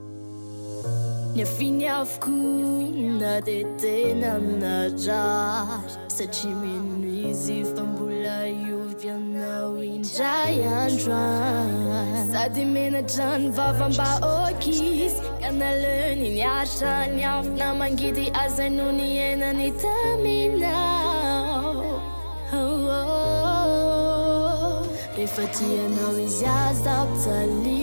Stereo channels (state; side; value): inverted; both; correlation -1.00